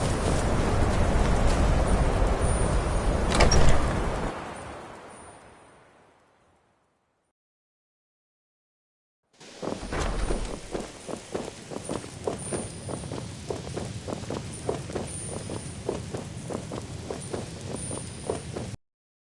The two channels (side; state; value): both; identical; correlation 1.00